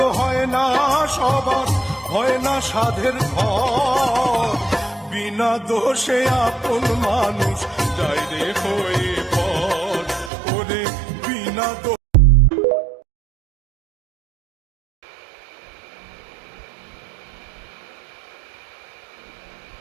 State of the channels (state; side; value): drops out; left; at 10.3 s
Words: হয় না সবার, হয় না সাধের ঘর। বিনা দোষে আপন মানুষ যায় রে হয়ে পর, ওরে বিনা দোষে